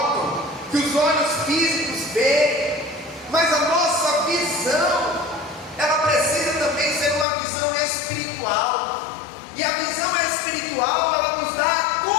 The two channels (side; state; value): right; drops out; at 7.2 s